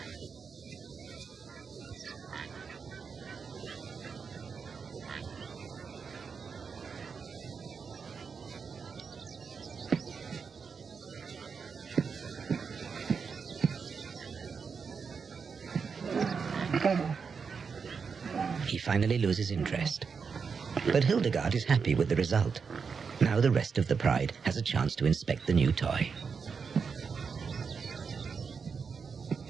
He finally loses interest. But Hildegard is happy with the result. Now the rest of the pride has a chance to inspect the new toy.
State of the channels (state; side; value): quieter; left; 5.7 dB